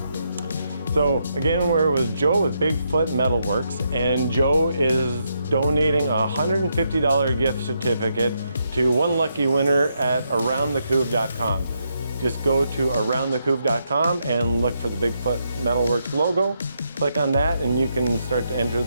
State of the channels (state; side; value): inverted; both; correlation -0.80